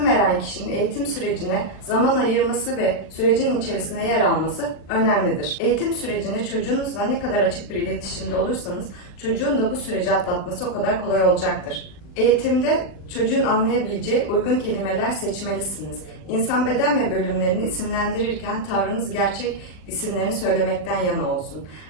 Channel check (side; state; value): right; late; 39 ms